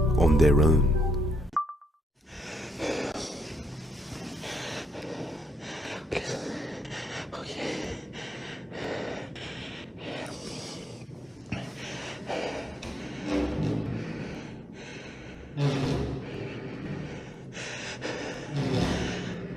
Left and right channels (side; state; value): both; normal; correlation 0.78